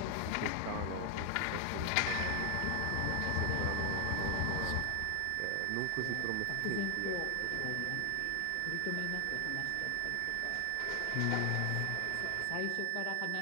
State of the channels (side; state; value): both; different; correlation 0.00